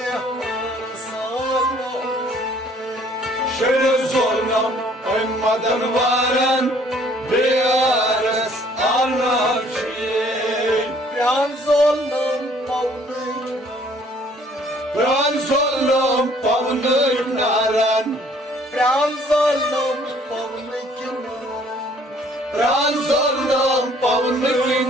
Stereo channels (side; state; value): both; normal; correlation 0.59